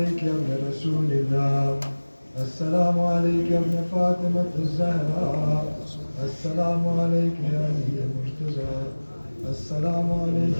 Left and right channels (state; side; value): inverted; both; correlation -1.00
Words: يا ابن رسول الله، السلام عليك يا ابن فاطمة الزهراء، السلام عليك يا علي المرتضى، السلام عليك